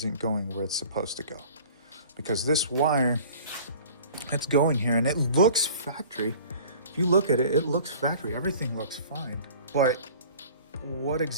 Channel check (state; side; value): inverted; both; correlation -0.46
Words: going where it's supposed to go. Because this wire, it's going here and it looks factory. If you look at it, it looks factory. Everything looks fine. But what